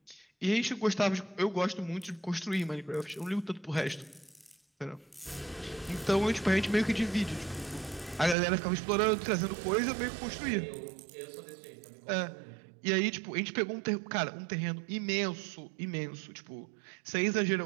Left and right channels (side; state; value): left; drops out; at 8.3 s